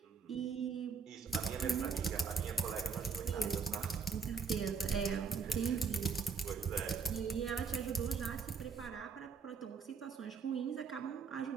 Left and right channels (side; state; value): left; quieter; 5.3 dB